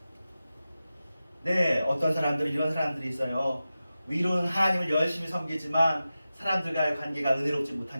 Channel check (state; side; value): inverted; both; correlation -0.93